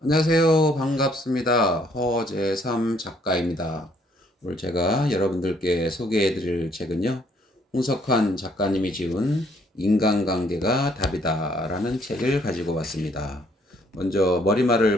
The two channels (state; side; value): normal; both; correlation 0.65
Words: 안녕하세요. 반갑습니다. 허재삼 작가입니다. 오늘 제가 여러분들께 소개해 드릴 책은요, 홍석환 작가님이 지은 인간관계가 답이다라는 책을 가지고 왔습니다. 먼저